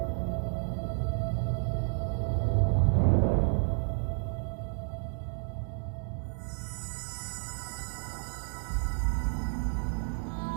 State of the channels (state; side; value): silent; left; 57 dB below the other